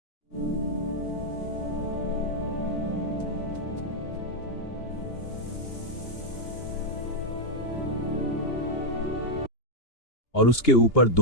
और उसके ऊपर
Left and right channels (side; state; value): right; late; 2.8 ms